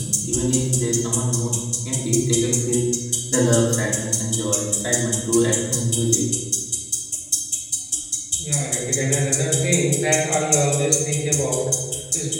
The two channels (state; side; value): identical; both; correlation 1.00